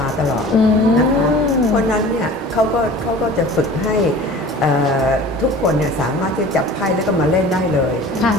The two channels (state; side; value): normal; both; correlation 0.42